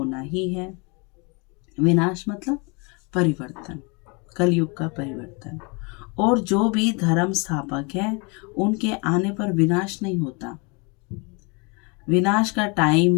ही है। विनाश मतलब परिवर्तन। कलयुग का परिवर्तन। और जो भी धर्म स्थापक है उनके आने पर विनाश नहीं होता। विनाश का टाइम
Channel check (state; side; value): quieter; right; 30.9 dB